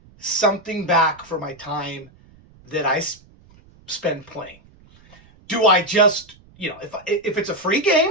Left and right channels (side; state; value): right; noise; rumble, 27 dB below the sound